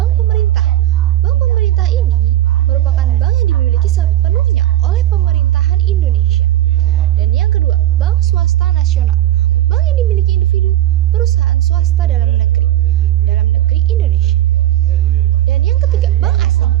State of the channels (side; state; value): left; quieter; 13.5 dB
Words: pemerintah. Bank pemerintah ini merupakan bank yang dimiliki sepenuhnya oleh pemerintahan Indonesia. Dan yang kedua, bank swasta nasional. Bank yang dimiliki individu, perusahaan swasta dalam negeri Indonesia. Dan yang ketiga, bank asing.